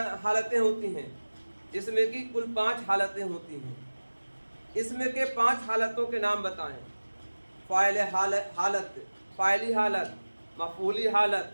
حالتیں ہوتی ہیں؟ اس میں کی کل 5 حالتیں ہوتی ہیں۔ اس میں کے 5 حالتوں کے نام بتائیں۔ فاعل حالت، فاعلی حالت، مفعولی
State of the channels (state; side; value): inverted; both; correlation -1.00